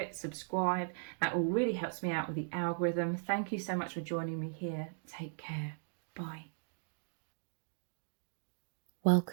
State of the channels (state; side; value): silent; left; digital silence